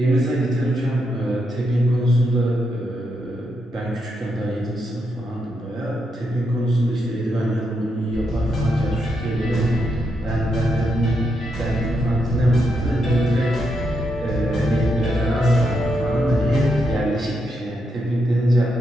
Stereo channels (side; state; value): both; normal; correlation 0.81